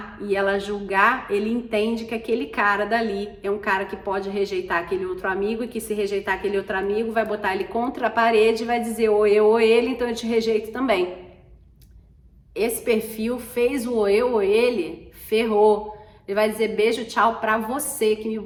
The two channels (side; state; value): both; identical; correlation 1.00